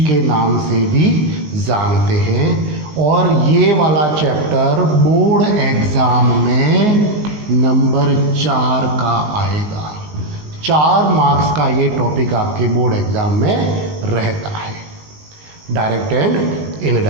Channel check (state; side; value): late; left; 19 ms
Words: के नाम से भी जानते हैं और ये वाला चैप्टर बोर्ड एग्ज़ाम में नंबर 4 का आएगा। 4 मार्क्स का ये टॉपिक आपके बोर्ड एग्ज़ाम में रहता है, डायरेक्ट एंड